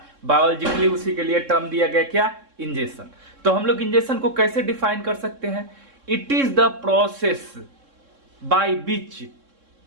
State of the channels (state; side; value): late; left; 3.7 ms